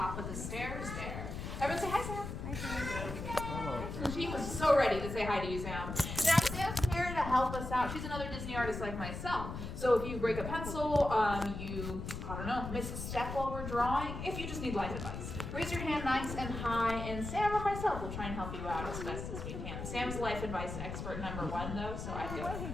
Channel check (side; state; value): left; noise; rumble, 6 dB below the sound